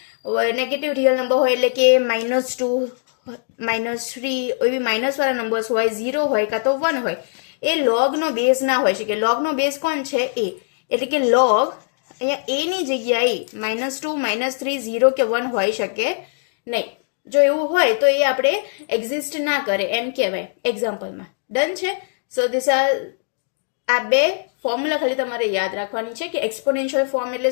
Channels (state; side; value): silent; right; digital silence